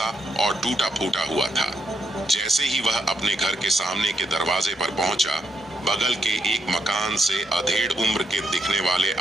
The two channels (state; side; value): normal; both; correlation 0.78